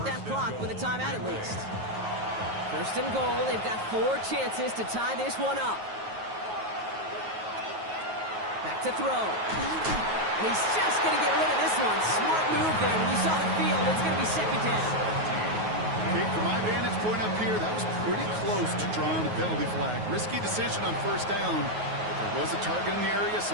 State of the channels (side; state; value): left; late; 9.4 ms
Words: that clock with a timeout at least. First and goal, they've got 4 chances to tie this one up. Back to throw. And he's just going to get rid of this one. Smart move there. When you saw the field, it's going to be second down. Okay, from my vantage point up here, that was pretty close to drawing a penalty flag. Risky decision on first down. There was a target in the area,